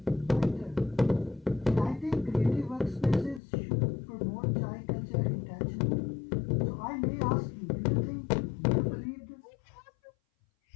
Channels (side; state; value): right; drops out; at 3.4 s